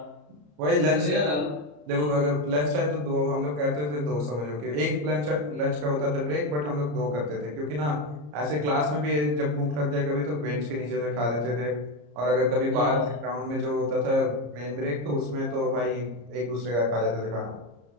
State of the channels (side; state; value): left; late; 34 ms